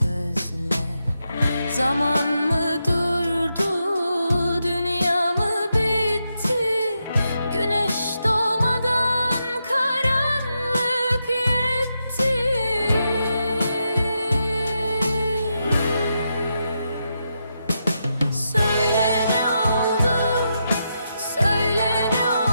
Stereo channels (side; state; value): both; inverted; correlation -0.84